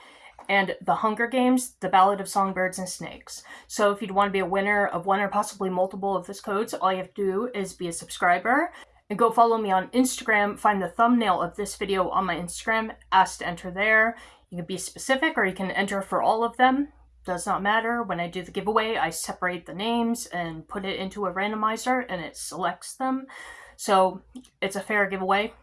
and The Hunger Games, The Ballad of Songbirds and Snakes. So if you'd want to be a winner of one or possibly multiple of these codes, all you have to do is be a subscriber and go follow me on Instagram. Find the thumbnail of this video on my Instagram, ask to enter there. You can be specific or you can enter for all of them. Does not matter. When I do the giveaway, I separate the names and put it into a randomizer and it selects them. So it's a fair giveaway.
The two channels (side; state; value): both; identical; correlation 1.00